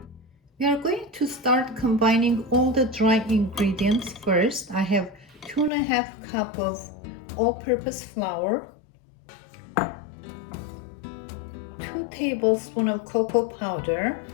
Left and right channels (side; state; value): right; drops out; at 5.7 s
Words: We are going to start combining all the dry ingredients first. I have 2.5 cups of all-purpose flour, 2 tablespoons of cocoa powder,